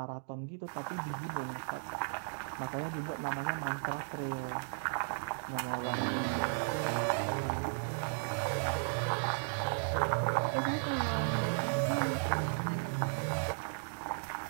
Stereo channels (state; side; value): silent; left; digital silence